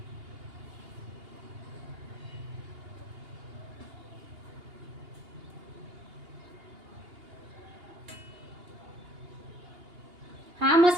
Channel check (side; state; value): left; late; 2.8 ms